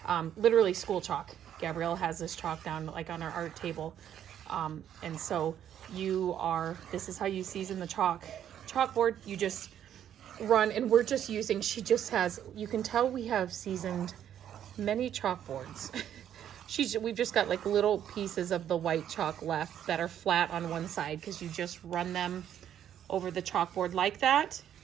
literally school chalk. Gabrielle has this chalk down like on our art table. And so this is how you season the chalkboard. You just run, and we're just using, she just has, you can tell we have seasoned many chalkboards. We've just got like little pieces of the white chalk left that are flat on one side because you just run them over the chalkboard like that.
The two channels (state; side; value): quieter; left; 10.1 dB